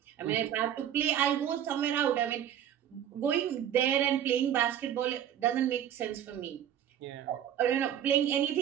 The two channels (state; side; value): quieter; left; 10.2 dB